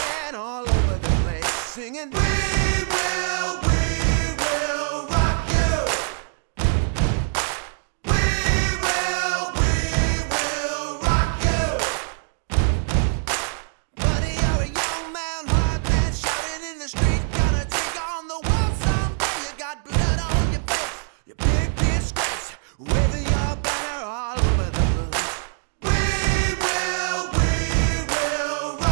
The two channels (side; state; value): left; silent; digital silence